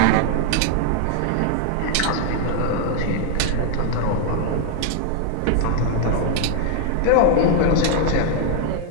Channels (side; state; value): both; different; correlation 0.00